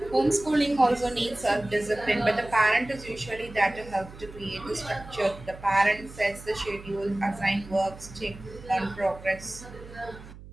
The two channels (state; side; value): noise; right; hum, 17 dB below the sound